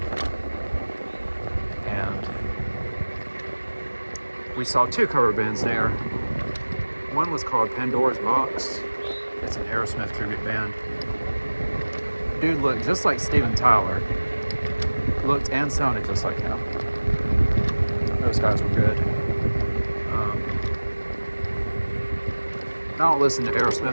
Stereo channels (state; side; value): inverted; both; correlation -1.00